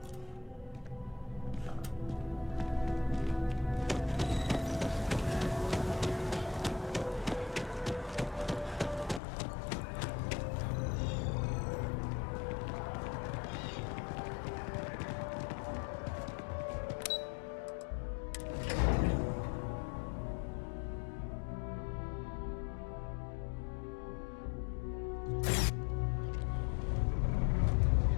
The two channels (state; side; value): drops out; right; at 9.2 s